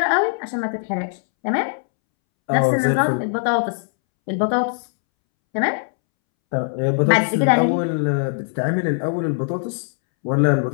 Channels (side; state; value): right; silent; 64 dB below the other